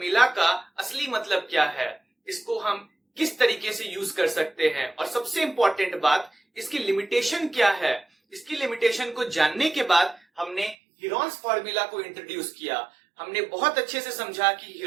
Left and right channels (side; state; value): left; drops out; at 10.8 s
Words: का असली मतलब क्या है, इसको हम किस तरीके से यूज कर सकते हैं, और सबसे इंपॉर्टेंट बात, इसकी लिमिटेशन क्या है। इसकी लिमिटेशन को जानने के बाद हमने हीरोन्स फॉर्मूला को इंट्रोड्यूस किया। हमने बहुत अच्छे से समझा कि